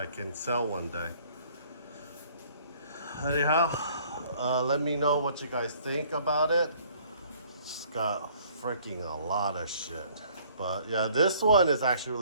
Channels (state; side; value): inverted; both; correlation -0.58